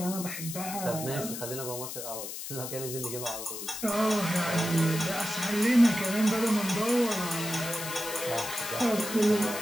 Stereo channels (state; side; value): noise; left; hiss, 7 dB below the sound